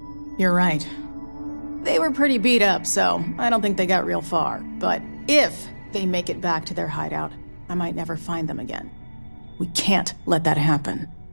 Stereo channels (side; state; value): both; inverted; correlation -1.00